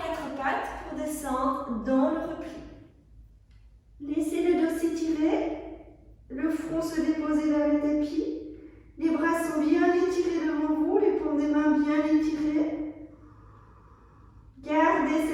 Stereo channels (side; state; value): both; identical; correlation 1.00